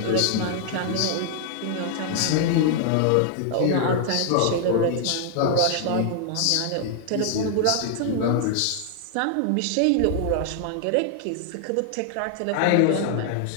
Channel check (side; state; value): both; different; correlation 0.00